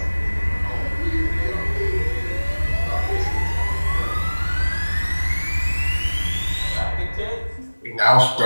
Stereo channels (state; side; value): inverted; both; correlation -1.00